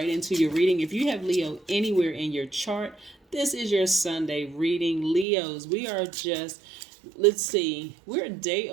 into your reading. If you have Leo anywhere in your chart, this is your Sunday reading. Leos, we are just, let's see, we're a day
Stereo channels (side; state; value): left; drops out; at 5.2 s